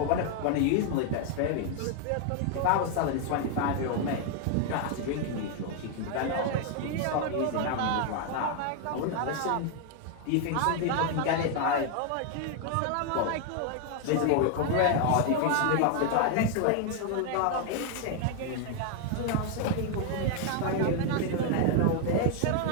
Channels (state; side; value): different; both; correlation 0.00